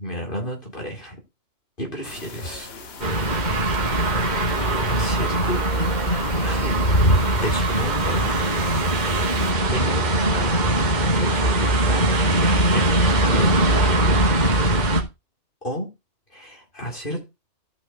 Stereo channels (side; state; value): right; late; 2.1 ms